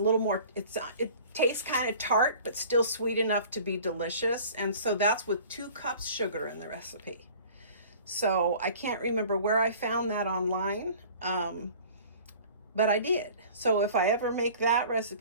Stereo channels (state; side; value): inverted; both; correlation -0.46